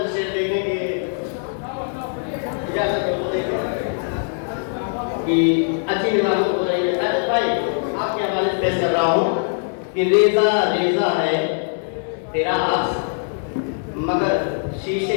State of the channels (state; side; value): silent; right; 65 dB below the other